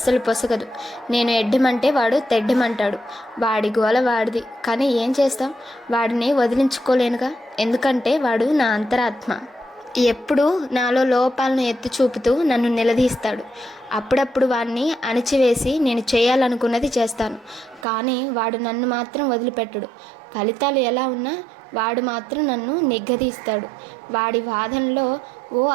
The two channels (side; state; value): left; drops out; at 17.9 s